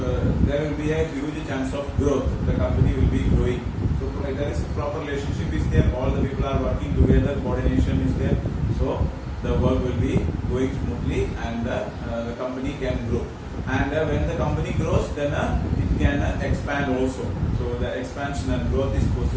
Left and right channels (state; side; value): identical; both; correlation 1.00